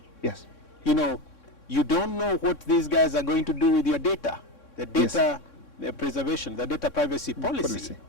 Yes. You know, you don't know what these guys are going to do with your data, the data preservation, the data privacy policy.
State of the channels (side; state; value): right; late; 3.6 ms